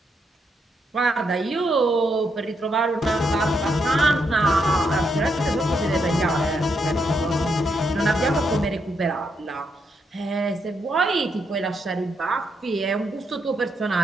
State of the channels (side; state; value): both; normal; correlation 0.79